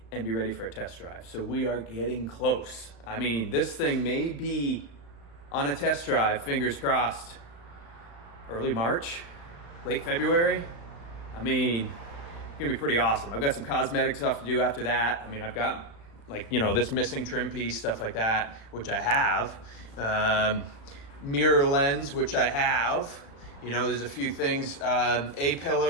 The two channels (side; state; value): right; late; 35 ms